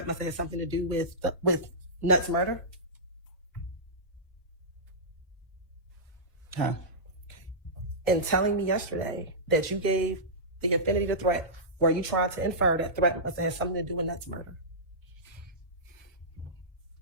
must have had something to do with Nuts' murder? Huh? In telling me yesterday that you gave the infinity to Threat, were you trying to infer that Threat must have had something to do with Nuts' murder?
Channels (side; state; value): both; normal; correlation -0.16